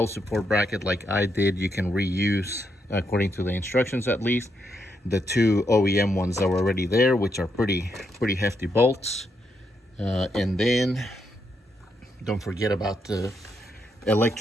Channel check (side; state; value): both; normal; correlation 0.80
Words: support bracket like I did, you can reuse, according to the instructions at least, the 2 OEM ones that were already there, which are pretty hefty bolts. And then don't forget about the